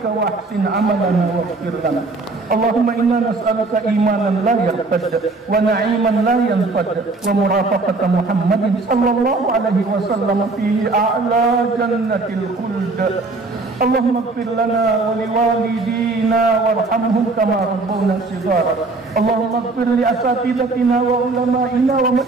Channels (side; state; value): left; quieter; 3.6 dB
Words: wa ahsin amalana wa ighfir lana. Allahumma inna nas'aluka imanan la yartad wa na'iman la yanfad wa murafaqata Muhammadin sallallahu alaihi wasallam fi a'la jannatil khuld. Allahumma ighfir lana wa liwalidina warhamhum kama rabbawna shighara. Allahumma ighfir li asatidatina wa ulama'ina wa